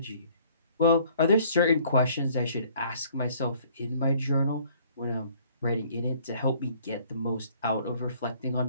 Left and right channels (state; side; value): inverted; both; correlation -0.58